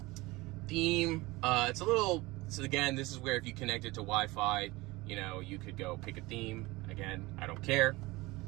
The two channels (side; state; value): left; quieter; 21.3 dB